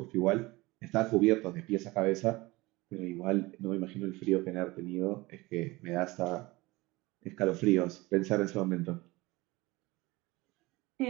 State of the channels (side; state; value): left; quieter; 21.5 dB